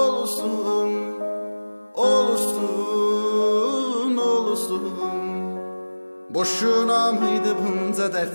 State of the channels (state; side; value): inverted; both; correlation -1.00